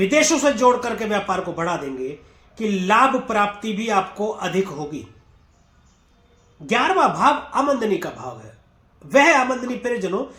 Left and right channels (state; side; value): identical; both; correlation 1.00